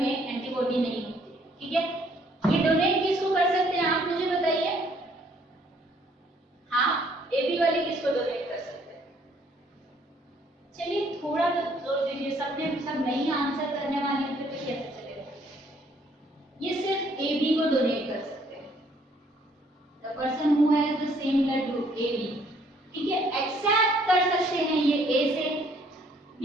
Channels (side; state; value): both; normal; correlation 0.64